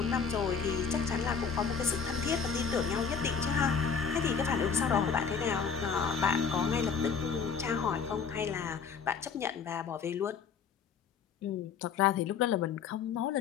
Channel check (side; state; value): right; quieter; 6.2 dB